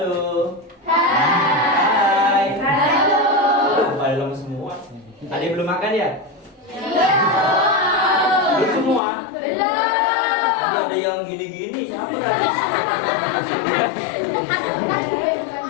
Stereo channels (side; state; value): right; drops out; at 9.0 s